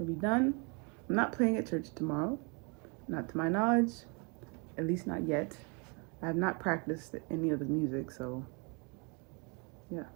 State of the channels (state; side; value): quieter; left; 32.5 dB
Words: be done. I'm not playing at church tomorrow, not to my knowledge, at least not yet. I have not practiced any of the music, so yeah.